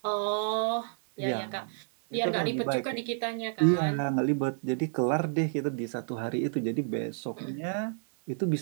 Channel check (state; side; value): silent; left; digital silence